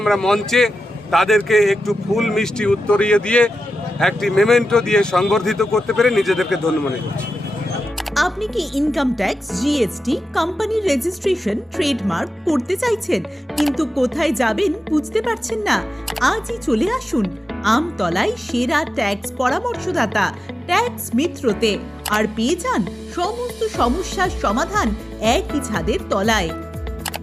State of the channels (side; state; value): both; normal; correlation 0.92